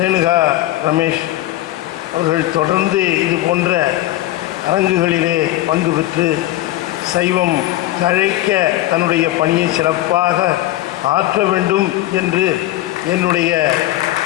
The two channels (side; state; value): right; quieter; 15.7 dB